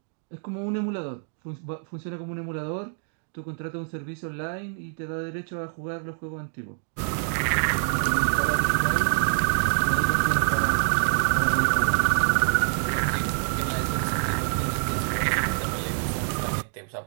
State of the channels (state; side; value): silent; left; 56 dB below the other